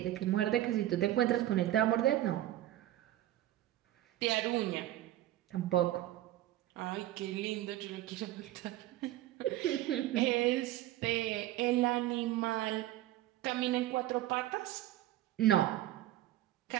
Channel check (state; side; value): quieter; left; 14.2 dB